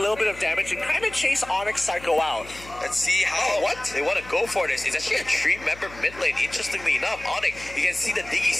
bit of damage and kind of chase Onyx Psycho out. Let's see how they want to go for this. It's actually a 3-member mid lane. Interestingly enough, Onyx, you can see the Diggy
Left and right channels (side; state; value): left; noise; hum, 19 dB below the sound